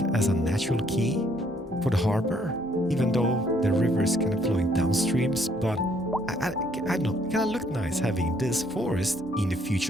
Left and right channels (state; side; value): normal; both; correlation 0.66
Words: as a natural key for the harbor, even though the river is kind of flowing downstreams. But I don't know, it kind of looked nice having this forest in the